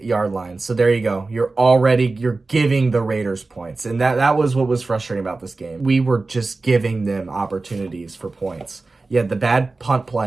line. So there you go. You're giving the Raiders points. And that was what was frustrating about this game. We were just giving them opportunities for points. You had the bad punt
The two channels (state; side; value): quieter; left; 3.6 dB